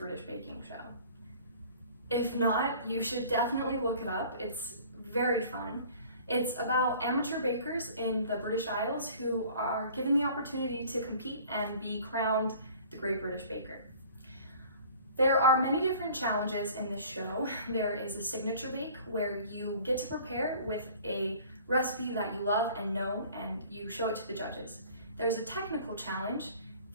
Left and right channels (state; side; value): inverted; both; correlation -0.48